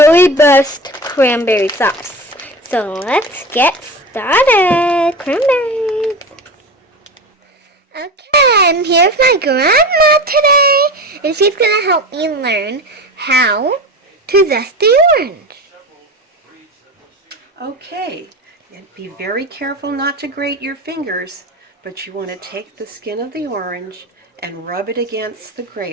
cranberry sauce. So let's get started. Cranberries. Okay, I'm here with my grandma today, and she's going to help me learn how to zest the orange. Okay, and be very careful not to grate your fingers, but you want to take the skin of the orange and rub it against the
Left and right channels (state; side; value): normal; both; correlation 0.29